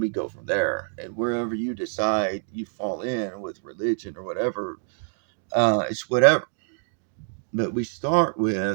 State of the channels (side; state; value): left; silent; 61 dB below the other